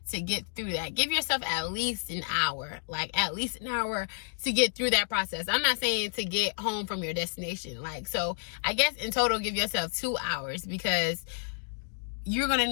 to get through that. Give yourself at least an hour, like at least an hour to get through that process. I'm not saying to get home from your destination. Like, so I guess in total, give yourself 2 hours, because you're going to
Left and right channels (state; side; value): silent; right; digital silence